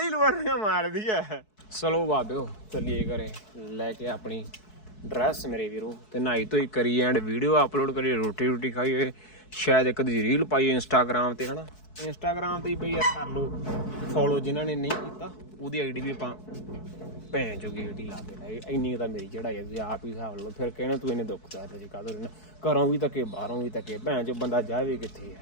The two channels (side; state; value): right; late; 4.7 ms